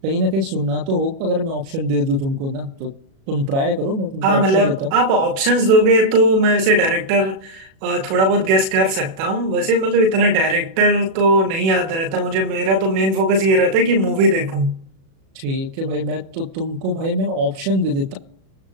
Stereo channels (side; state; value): left; late; 37 ms